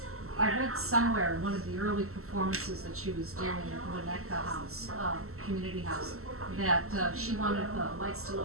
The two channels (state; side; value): late; left; 0.63 ms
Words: I read somewhere in one of the early performances that she was doing at Winnetka House, Community House, that she wanted the lights to